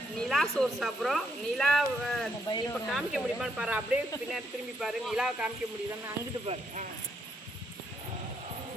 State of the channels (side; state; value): both; normal; correlation 0.75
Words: நிலா சோறு சாப்பிட்றோம். நிலா இப்போ காமிக்க முடியுமான்னு பாரு, அப்படியே பின்னாடி திரும்பி பாரு. நிலாவை காமிக்க முடியுதான்னு அங்கிட்டு பாரு.